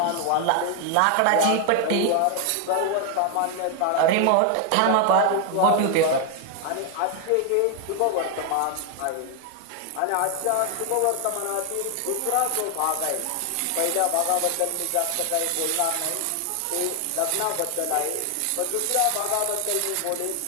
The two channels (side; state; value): both; different; correlation 0.00